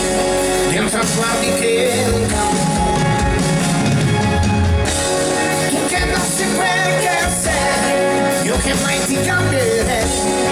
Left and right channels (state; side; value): identical; both; correlation 1.00